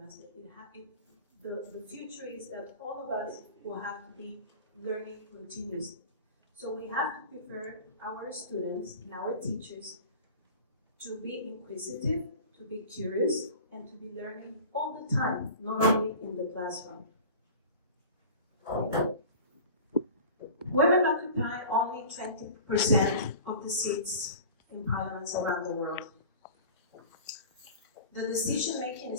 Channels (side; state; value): both; inverted; correlation -0.38